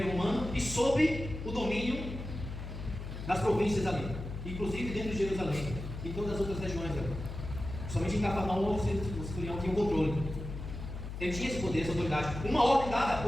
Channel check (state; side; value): noise; left; hum, 8 dB below the sound